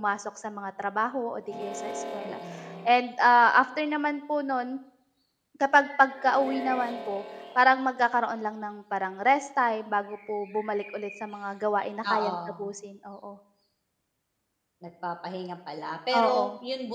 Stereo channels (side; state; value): both; identical; correlation 1.00